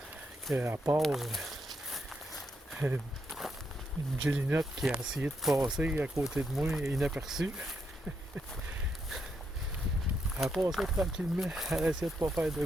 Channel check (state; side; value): normal; both; correlation 0.79